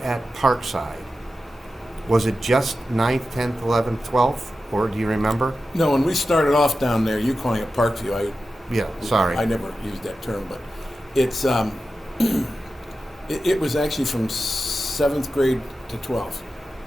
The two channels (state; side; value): normal; both; correlation 0.92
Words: Parkside, was it just 9th, 10th, 11th, 12th? Or do you remember? No, when we started off down there, you calling it Parkview, Sorry. I never used that term, but it's it was actually from 7th grade to 12th.